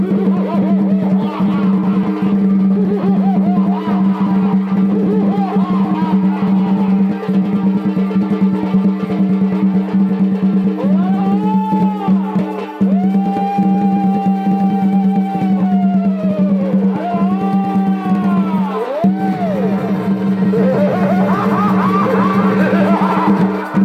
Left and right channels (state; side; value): identical; both; correlation 1.00